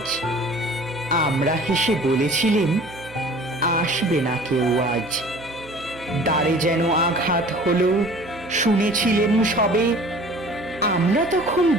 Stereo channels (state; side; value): noise; right; hum, 20 dB below the sound